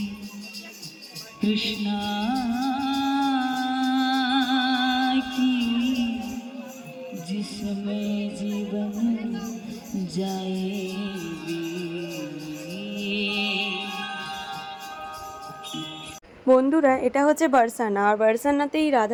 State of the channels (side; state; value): both; identical; correlation 1.00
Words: कृष्णा की, जिसमें जीवन जाएगी। বন্ধুরা, এটা হচ্ছে বারসানা। আর বারসানাতেই